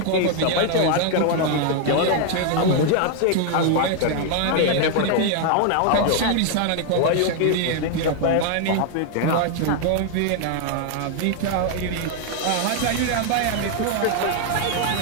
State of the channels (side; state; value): both; different; correlation 0.00